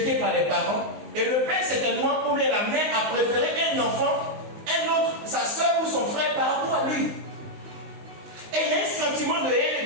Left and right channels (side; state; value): left; late; 19 ms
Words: par les parents. Et le père, certainement, ou bien la mère, a préféré un enfant, un autre, sa soeur ou son frère par rapport à lui. Et il y a un sentiment de haine